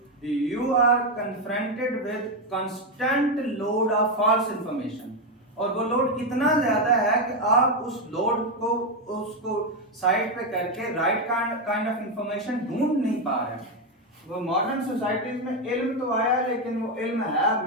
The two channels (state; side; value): normal; both; correlation 0.07